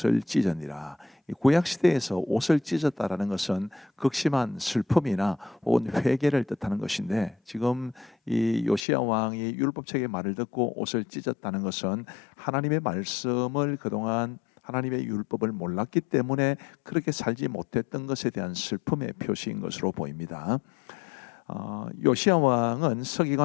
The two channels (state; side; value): drops out; right; at 8.8 s